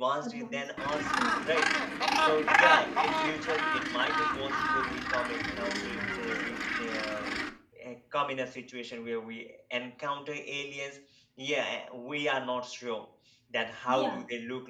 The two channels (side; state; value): both; identical; correlation 1.00